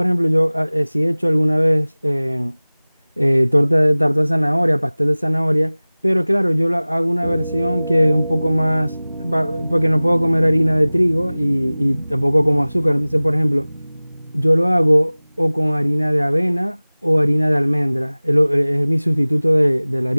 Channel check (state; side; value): inverted; both; correlation -0.99